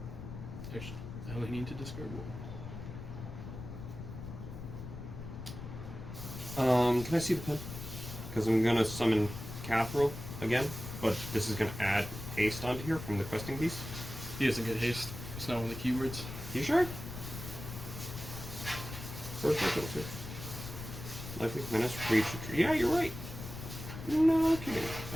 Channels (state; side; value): noise; left; rumble, 10 dB below the sound